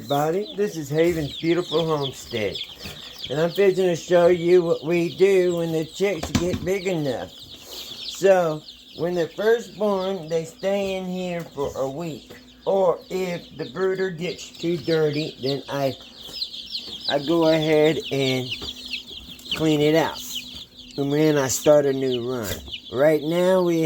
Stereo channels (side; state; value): both; identical; correlation 1.00